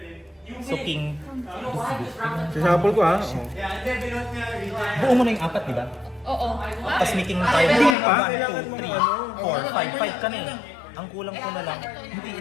So, King. Sasapol ko ha. Buo mo na yung 4, di ba? Oo. Tapos making tayo. Hindi pa. 1, 2, 3, 4, 5. 5 ka na eh. Ang kulang ko na lang. Hindi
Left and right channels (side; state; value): right; drops out; at 8.0 s